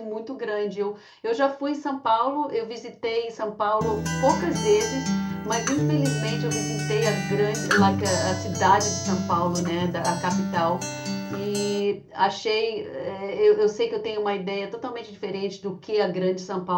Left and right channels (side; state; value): both; identical; correlation 1.00